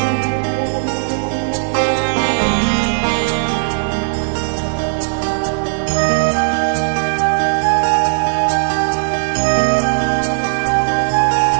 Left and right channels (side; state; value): left; silent; digital silence